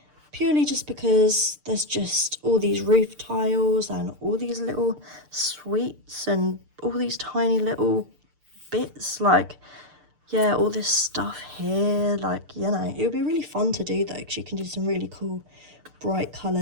Purely just because there's just all these roof tiles and all these little sweets and all these tiny little bits, like, yeah, all this stuff here, like, you know, it would be really fun to do though, because you can do some really cool bright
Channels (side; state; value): left; late; 6.7 ms